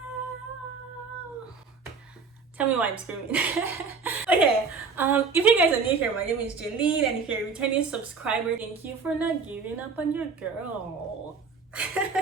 Tell me why I'm screaming. Okay, if you guys are new here, my name is Jaylene, and if you're a returning subscriber, thank you for not giving up on your girl.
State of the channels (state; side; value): quieter; left; 5.0 dB